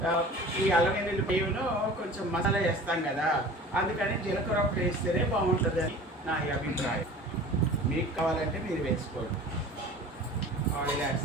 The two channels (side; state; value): both; normal; correlation 0.41